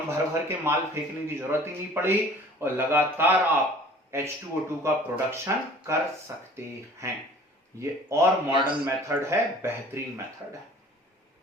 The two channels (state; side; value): normal; both; correlation 0.49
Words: भर भर के माल फेंकने की जरूरत ही नहीं पड़ी और लगातार आप H2O2 का प्रोडक्शन कर सकते हैं। ये और मॉडर्न मेथड है, बेहतरीन मेथड है।